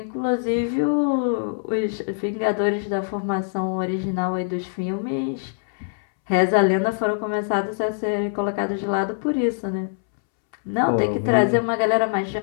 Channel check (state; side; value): silent; right; 63 dB below the other